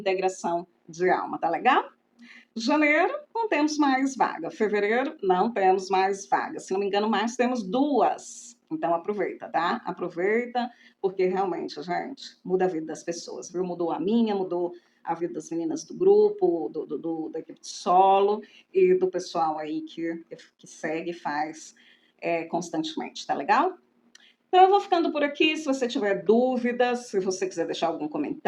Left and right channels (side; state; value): both; identical; correlation 1.00